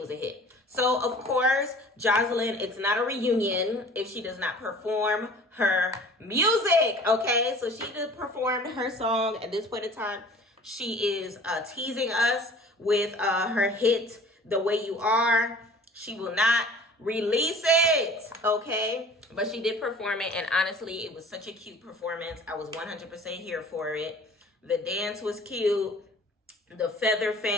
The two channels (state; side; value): normal; both; correlation 0.47